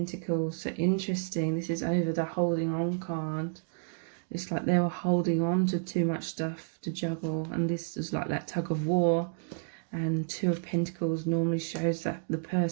So interesting. This is over the holding on card. It's like they were holding on to too much stuff to juggle. And this is like that tug of war. And 2 of Pentacles normally shows that the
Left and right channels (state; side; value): silent; left; digital silence